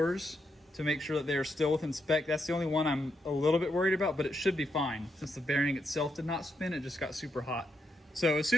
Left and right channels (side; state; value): both; normal; correlation 0.81